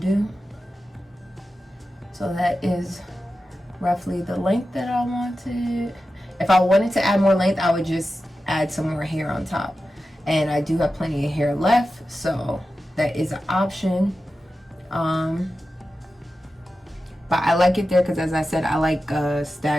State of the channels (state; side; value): normal; both; correlation 0.93